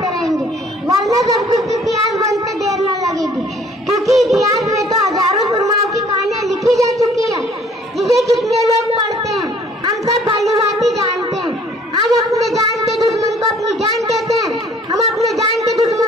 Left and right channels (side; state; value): both; normal; correlation 0.56